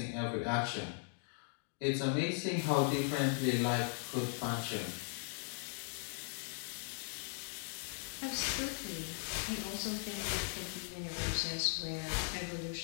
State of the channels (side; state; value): right; silent; 52 dB below the other